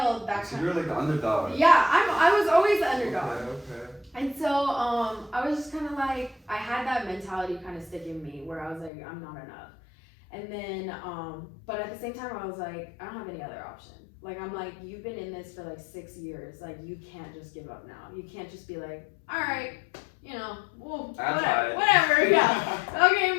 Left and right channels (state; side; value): drops out; right; at 8.9 s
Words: so you're like the underdog. Yeah, I was always the underdog. Okay. And so I was just kind of like, I had that mentality kind of stick in me where I was like, I'm not enough. And then, but at the same time, I was like, I don't have any other option. Like, I'm like, you've been in this for like 6 years. Like, you can't just give up now. You can't just be like, all right, well, whatever, yeah. Okay,